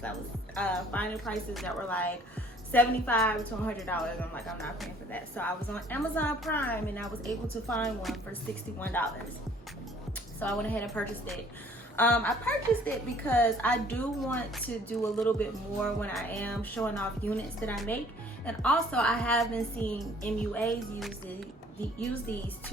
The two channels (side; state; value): both; normal; correlation 0.56